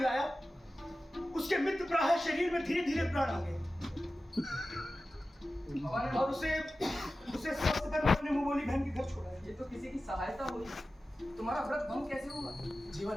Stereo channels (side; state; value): both; normal; correlation 0.95